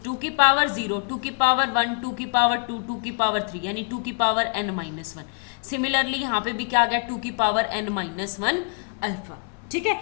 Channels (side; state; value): right; quieter; 36.7 dB